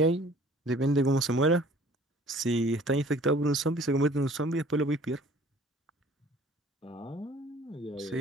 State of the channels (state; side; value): normal; both; correlation 0.52